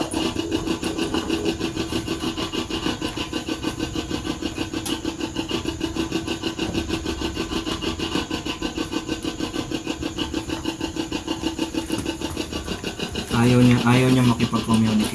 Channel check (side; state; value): both; identical; correlation 1.00